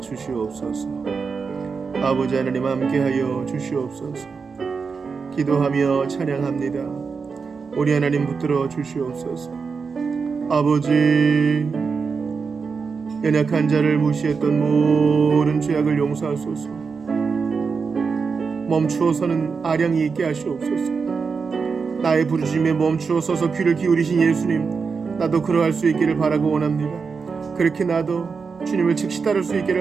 주시옵소서. 아버지 하나님 함께하여 주시옵소서. 기도하며 찬양합니다. 우리 하나님 붙들어 주시옵소서. 아버지, 연약한 자를 무시했던 모든 죄악을 용서하소서. 멈추어서는 아량이 있게 하시옵소서. 나의 부르짖음에 멈추어 서서 귀를 기울이신 예수님, 나도 그러할 수 있기를 바라고 원합니다. 그렇게 나도 주님을 즉시 따를 수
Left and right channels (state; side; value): quieter; left; 5.2 dB